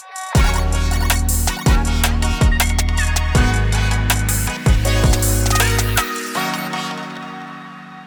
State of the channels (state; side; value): identical; both; correlation 1.00